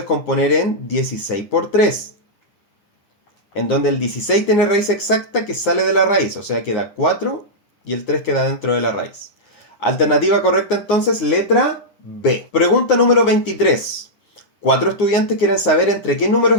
en 16 por 3, en donde el 16 tiene raíz exacta que sale de la raíz, o sea queda 4 y el 3 queda dentro de la raíz. Alternativa correcta entonces, letra B. Pregunta número 23. 4 estudiantes quieren saber entre qué números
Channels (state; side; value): late; right; 9.6 ms